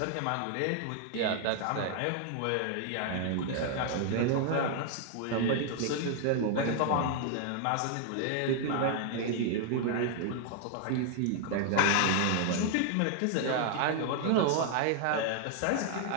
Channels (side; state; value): both; different; correlation 0.00